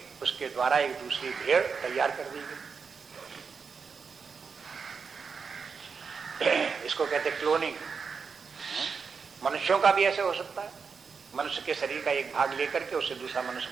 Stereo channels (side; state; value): left; quieter; 5.6 dB